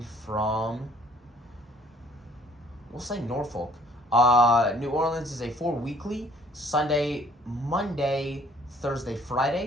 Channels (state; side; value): normal; both; correlation 0.59